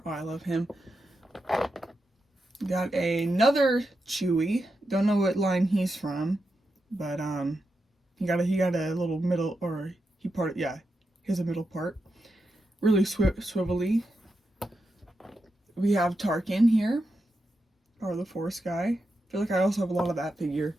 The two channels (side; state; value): both; normal; correlation 0.87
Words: Oh, I love him. Got another Chewie. Don't know what line he's from, but he got a little middle, or he has a middle part. Really swivelly. We have Tarkin here. Power of the Force guy. I feel like I also have a lot of that figure.